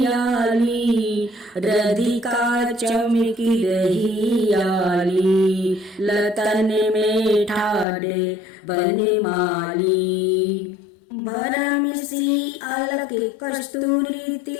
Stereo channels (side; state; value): right; drops out; at 7.9 s